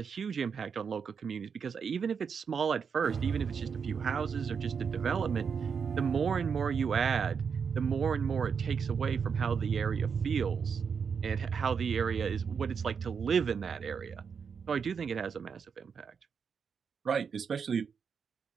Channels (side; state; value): left; quieter; 6.3 dB